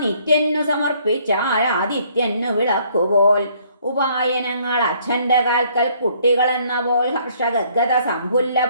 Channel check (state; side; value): inverted; both; correlation -0.64